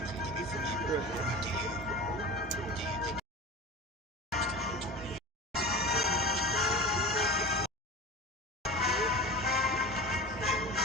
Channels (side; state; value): both; normal; correlation 0.32